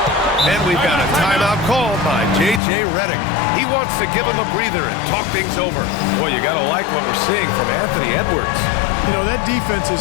And we've got a timeout called by J.J. Redick. He wants to give him a breather and talk things over. Boy, you got to like what we're seeing from Anthony Edwards. You know, that defense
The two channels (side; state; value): right; drops out; at 2.6 s